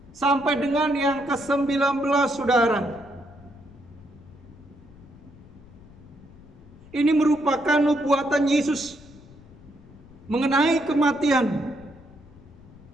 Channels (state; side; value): noise; left; rumble, 22 dB below the sound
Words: sampai dengan yang ke-19, saudara. Ini merupakan nubuatan Yesus mengenai kematian